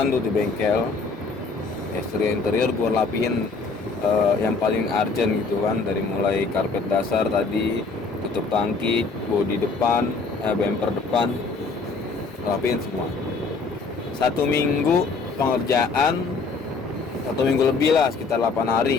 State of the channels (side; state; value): right; quieter; 4.2 dB